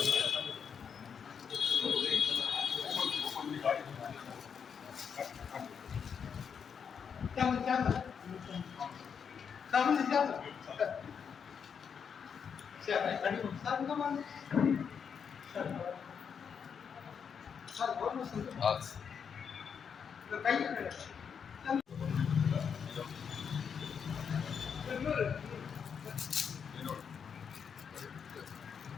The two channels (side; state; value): right; quieter; 6.9 dB